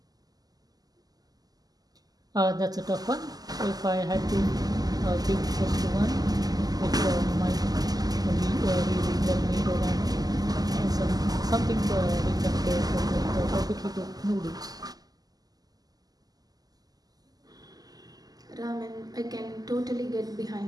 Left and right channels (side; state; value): left; late; 0.18 ms